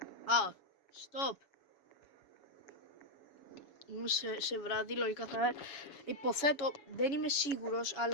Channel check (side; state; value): right; late; 7.1 ms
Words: Stop. Είμαι σε βράδυ, λογικά θα... Υποθέτω, δεν είμαι σίγουρος,